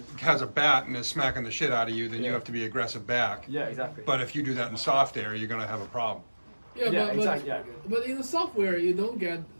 has a bat and is smacking the shit out of you, then you Yeah. have to be aggressive back. Yeah, exactly. But if you do that in soft air, you're gonna have a problem. Yeah, Yeah, but, exactly, yeah. but in the software, you don't get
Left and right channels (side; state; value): both; inverted; correlation -1.00